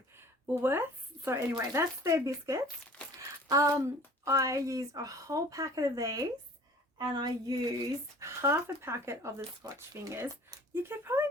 Woolworths. So anyway, that's their biscuits. I used a whole packet of these, and I used half a packet of the Scotch Fingers. You could probably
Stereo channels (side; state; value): both; normal; correlation 0.48